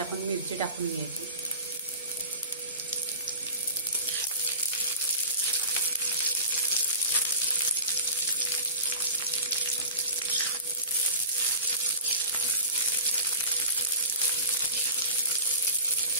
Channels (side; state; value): both; inverted; correlation -0.35